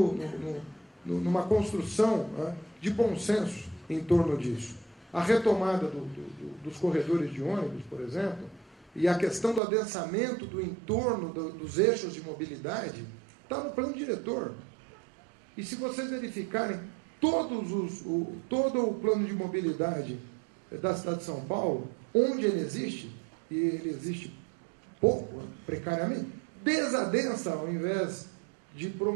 numa construção, né, de bom senso em torno disso. A retomada dos corredores de ônibus, por exemplo, e a questão do adensamento do entorno dos eixos de mobilidade está no plano diretor. E se vocês verificarem todo o plano de mobilidade da cidade de São Paulo, onde ele existe, e ele existe pouco, precariamente, desadensa ao invés de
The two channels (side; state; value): left; drops out; at 9.6 s